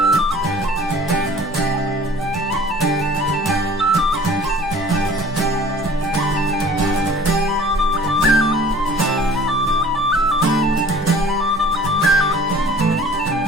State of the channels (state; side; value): noise; right; hum, 20 dB below the sound